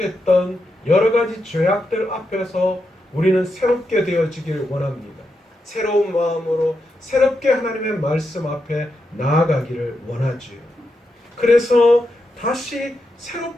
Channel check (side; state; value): both; normal; correlation 0.85